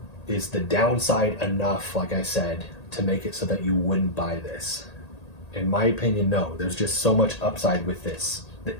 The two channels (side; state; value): right; late; 1.8 ms